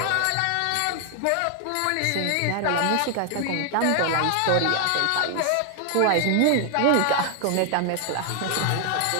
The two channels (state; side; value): different; both; correlation 0.00